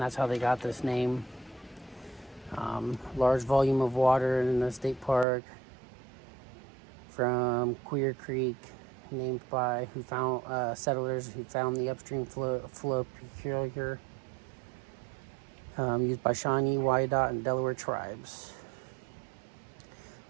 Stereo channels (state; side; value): drops out; left; at 5.2 s